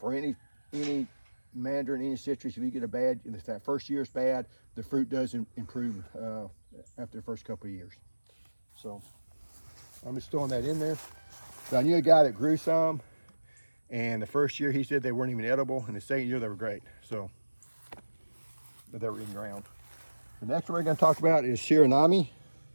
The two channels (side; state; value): both; inverted; correlation -1.00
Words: any mandarin, any citrus, if you get if that first year is bad, the fruit does improve after the first couple of years. So I'm just throwing that in there. So I knew a guy that grew some, and the first year he said they weren't even edible, and the second year they were great. So, but they were in ground. The next one we're going to talk about is Shiranami.